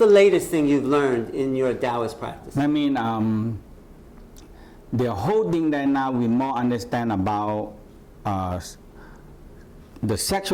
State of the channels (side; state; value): both; identical; correlation 1.00